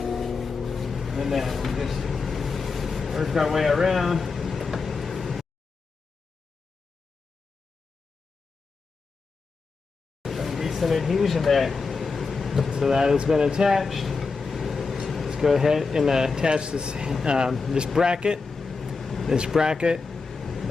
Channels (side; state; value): right; quieter; 4.5 dB